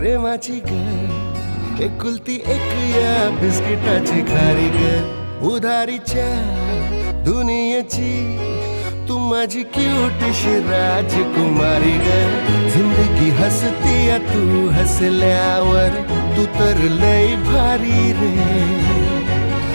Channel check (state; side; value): inverted; both; correlation -1.00